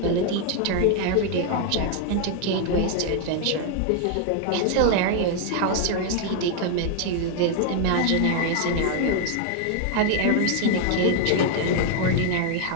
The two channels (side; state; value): both; different; correlation 0.00